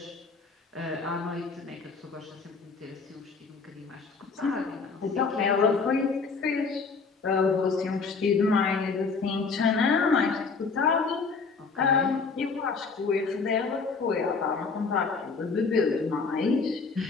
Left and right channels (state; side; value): quieter; right; 4.7 dB